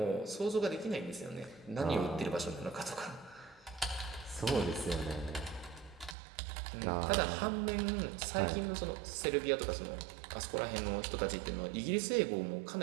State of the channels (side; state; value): left; drops out; at 6.2 s